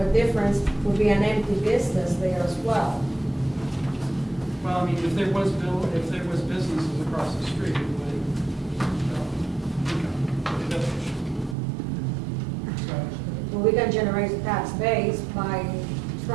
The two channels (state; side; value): drops out; left; at 11.6 s